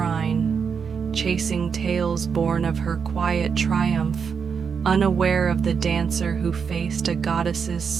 chasing tales born of her quiet triumph, unaware of the dancer who faced a goddess's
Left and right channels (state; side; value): quieter; left; 6.3 dB